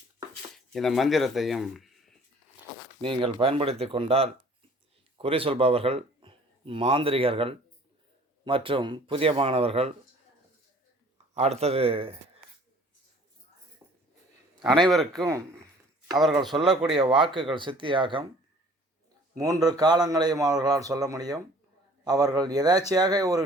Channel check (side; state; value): both; normal; correlation 0.52